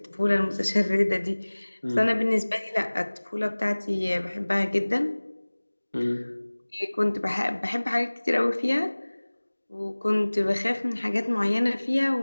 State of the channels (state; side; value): inverted; both; correlation -1.00